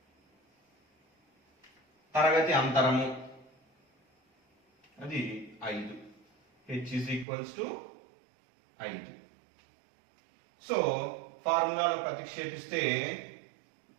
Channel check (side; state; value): left; drops out; at 7.2 s